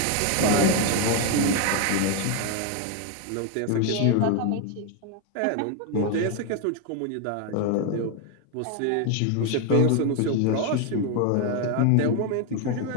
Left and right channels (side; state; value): both; different; correlation 0.01